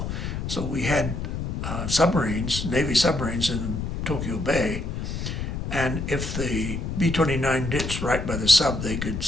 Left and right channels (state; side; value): noise; left; rumble, 4 dB below the sound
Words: So we had submarines, Navy submarines in Tokyo Bay, and if the B-29 ditched right by the sub, they could